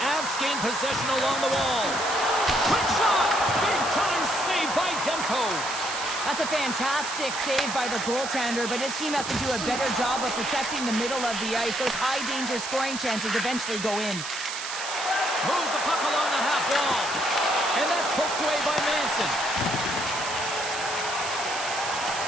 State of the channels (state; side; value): noise; right; hiss, 7 dB below the sound